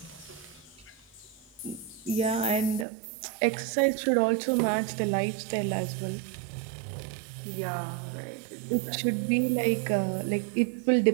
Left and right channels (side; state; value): left; drops out; at 2.9 s